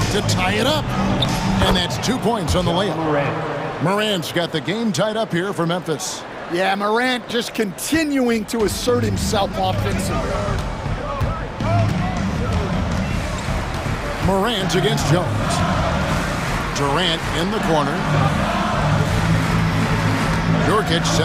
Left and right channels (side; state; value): both; identical; correlation 1.00